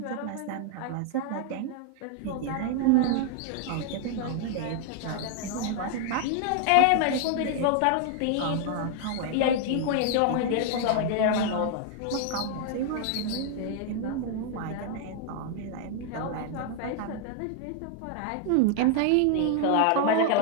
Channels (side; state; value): both; different; correlation 0.00